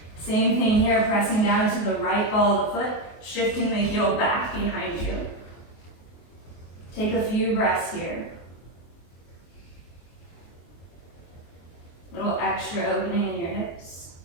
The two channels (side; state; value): right; late; 23 ms